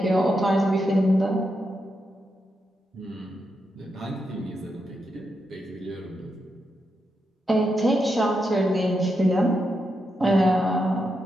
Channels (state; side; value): normal; both; correlation 0.84